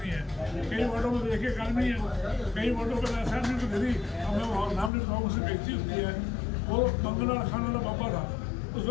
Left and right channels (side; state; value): right; drops out; at 4.9 s